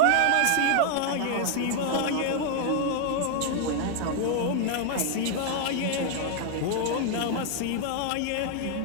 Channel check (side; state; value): both; different; correlation 0.00